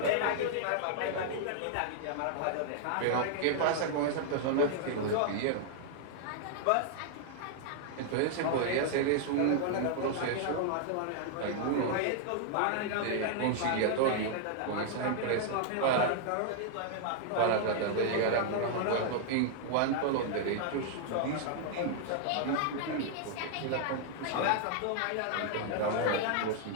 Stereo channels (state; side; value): different; both; correlation -0.01